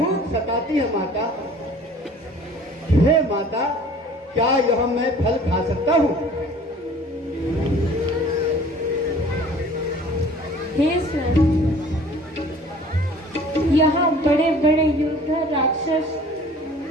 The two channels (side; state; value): both; normal; correlation 0.49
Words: सताती है माता। हे माता क्या यह मैं फल खा सकता हूँ? हे स्वामी, यहाँ बड़े बड़े योद्धा राक्षस